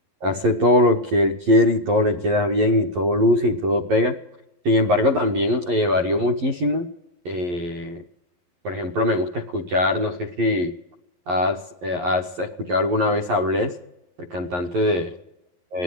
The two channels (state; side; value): late; left; 11 ms